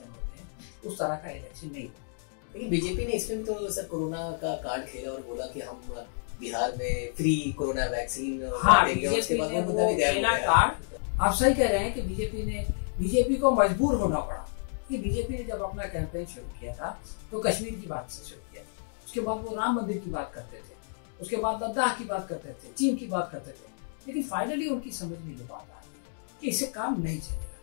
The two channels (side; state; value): right; silent; digital silence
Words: होते हैं उस तरह का इलेक्शन नहीं। लेकिन बीजेपी ने इसमें तो सर कोरोना का कार्ड खेला और बोला कि हम बिहार में फ्री कोरोना वैक्सीन देंगे। उसके बाद वो खेला कार्ड। आप सही कह रहे हैं कि बीजेपी को मजबूर होना पड़ा कि बीजेपी ने जब अपना कैंपेन शुरू किया था तो कश्मीर की बात से शुरू किया था, उसके बाद वो राम मंदिर की बात करते थे, उसके बाद लद्दाख की बात करते थे, चीन की बात करते थे, लेकिन फाइनली उनकी समझ में ये बात आ गई कि इससे काम नहीं चलेगा।